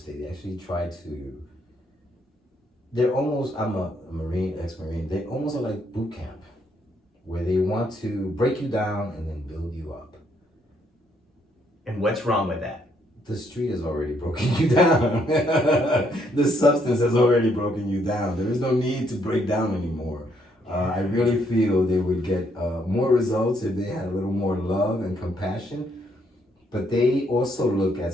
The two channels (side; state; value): both; normal; correlation 0.71